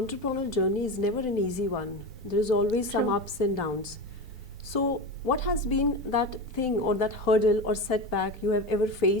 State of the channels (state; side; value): normal; both; correlation 0.23